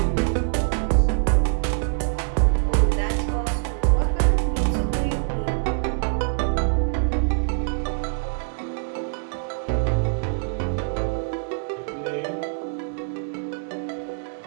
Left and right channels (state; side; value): silent; left; digital silence